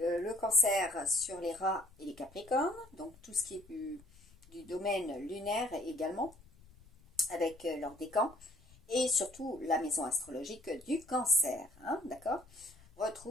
cancer sur les rats et les capricornes, donc tout ce qui est du domaine lunaire également, avec leur décan, et surtout la maison astrologique du cancer, hein, d'accord.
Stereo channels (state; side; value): noise; left; rumble, 25 dB below the sound